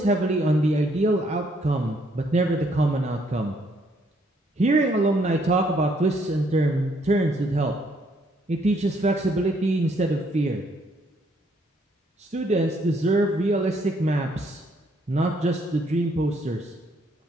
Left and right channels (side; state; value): both; normal; correlation 0.69